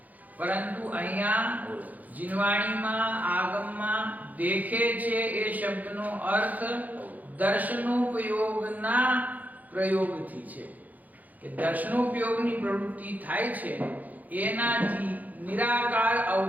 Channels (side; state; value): left; late; 0.080 ms